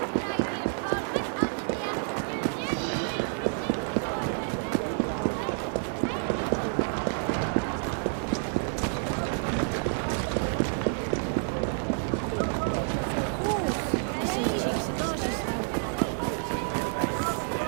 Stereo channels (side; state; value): left; silent; 59 dB below the other